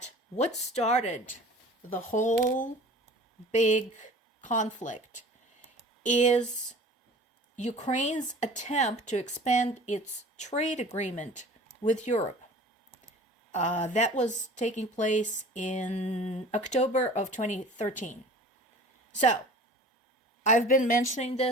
what started the whole big conflict is Ukraine's attempt to expand its trade agreement with Europe. That was taking place in October of 2013. So, I've been mentioning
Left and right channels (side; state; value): both; normal; correlation 0.43